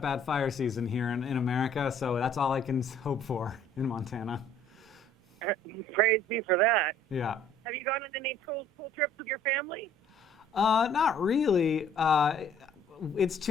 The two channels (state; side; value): normal; both; correlation 0.56